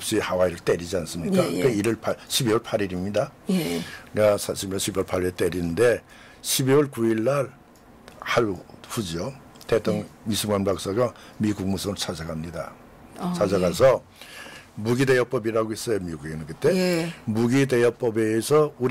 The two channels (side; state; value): both; identical; correlation 1.00